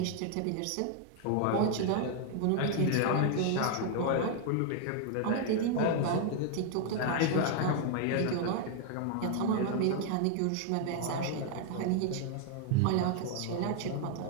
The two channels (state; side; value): different; both; correlation 0.00